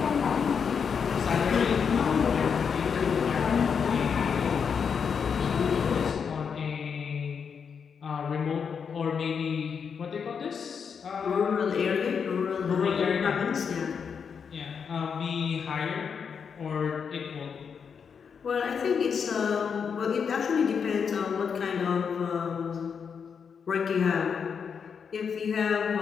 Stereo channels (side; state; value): right; quieter; 6.5 dB